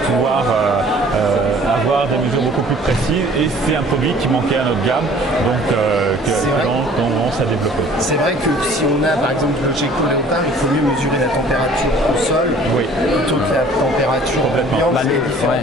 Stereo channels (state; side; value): normal; both; correlation 0.52